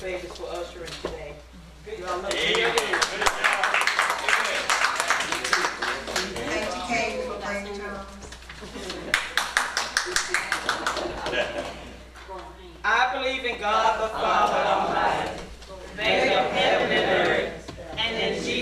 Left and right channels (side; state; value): both; identical; correlation 1.00